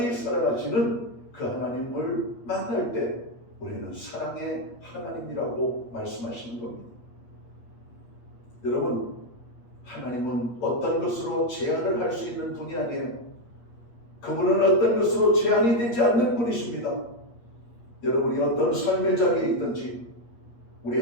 사랑하시는 그 하나님을 만날 때 우리는 사랑의 하나님이라고 말씀하시는 겁니다. 여러분, 하나님은 어떤 것으로 제한을 할 수 있는 분이 아니에요. 그분은 어떤 것으로 제한이 되지 않는 분이십니다. 여러분이 어떤 삶의 자리에 있든지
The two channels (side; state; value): right; late; 8.4 ms